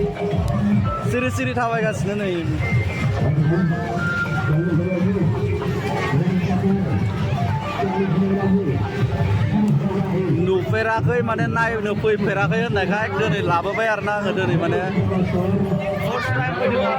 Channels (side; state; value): both; identical; correlation 1.00